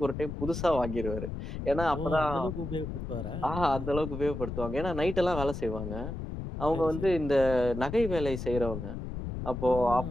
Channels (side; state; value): left; noise; rumble, 6 dB below the sound